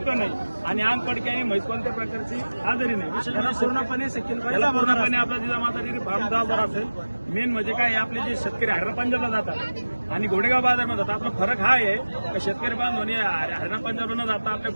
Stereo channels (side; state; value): both; inverted; correlation -1.00